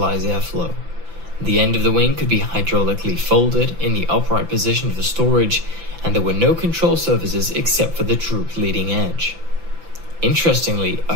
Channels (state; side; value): late; left; 5.9 ms